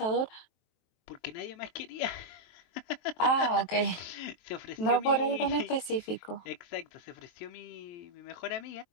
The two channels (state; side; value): late; right; 23 ms